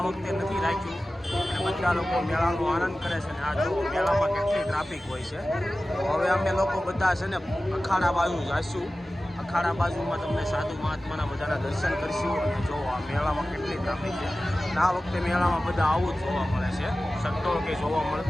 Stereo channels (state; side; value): normal; both; correlation 0.96